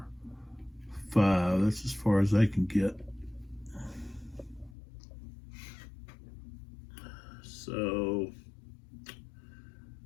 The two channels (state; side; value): drops out; right; at 4.8 s